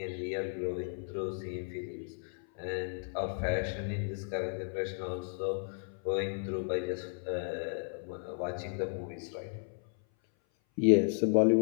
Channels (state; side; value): silent; right; 55 dB below the other